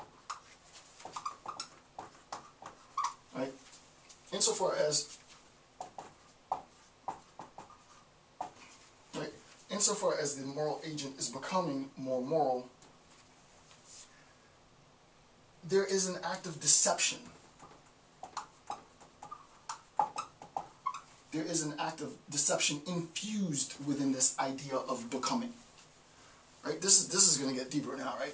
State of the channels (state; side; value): identical; both; correlation 1.00